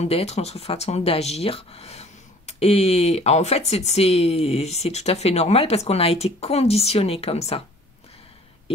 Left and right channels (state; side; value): normal; both; correlation 0.52